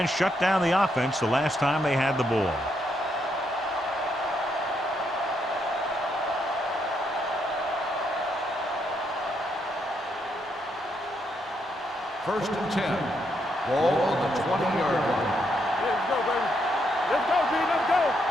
shut down the offense the last time they had the ball. First and 10. Ball on the 20-yard line. Let's go, baby. Let's go, G. Let's go.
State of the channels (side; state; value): both; normal; correlation 0.77